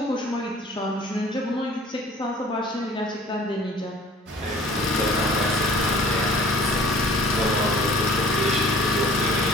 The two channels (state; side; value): normal; both; correlation 0.50